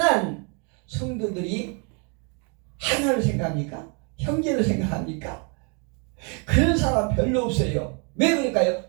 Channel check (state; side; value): quieter; left; 35.9 dB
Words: 성도들이 하나를 생각합니까? 형제를 생각합니까? 그런 사람 별로 없어요. 왜 그럴까요?